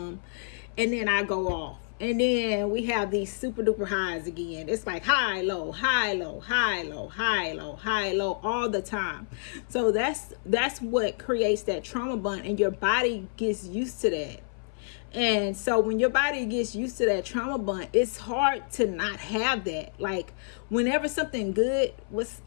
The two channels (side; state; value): right; silent; 58 dB below the other